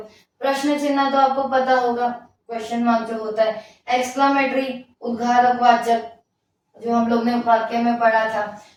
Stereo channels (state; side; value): identical; both; correlation 1.00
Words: प्रश्न चिन्ह तो आपको पता होगा, क्वेश्चन मार्क जो होता है। एक्सक्लामेटरी, उद्गारक वाचक, जो हम लोग ने वाक्य में पढ़ा था।